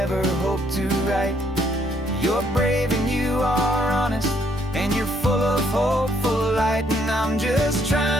hope to write. You're brave and you are honest, and you're full of hope, full of light. And I'm just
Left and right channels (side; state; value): both; normal; correlation 0.69